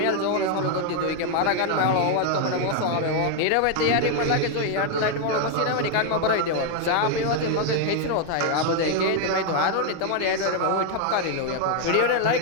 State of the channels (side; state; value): both; different; correlation 0.00